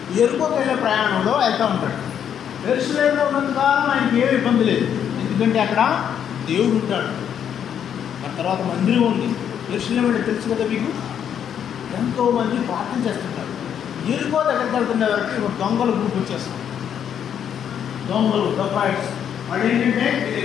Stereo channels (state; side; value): quieter; right; 8.8 dB